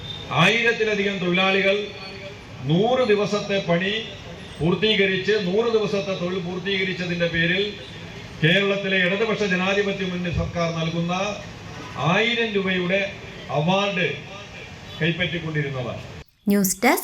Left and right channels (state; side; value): identical; both; correlation 1.00